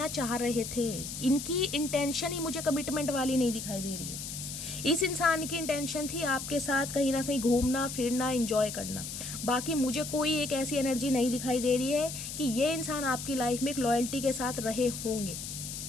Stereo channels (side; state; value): left; noise; hiss, 7 dB below the sound